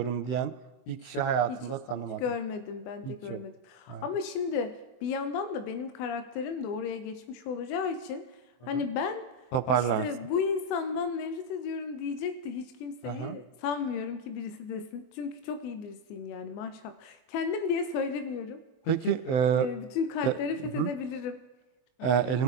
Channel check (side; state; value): right; late; 24 ms